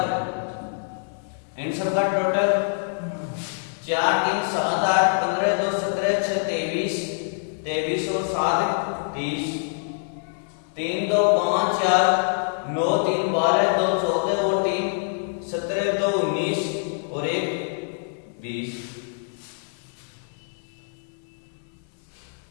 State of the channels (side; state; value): right; silent; 60 dB below the other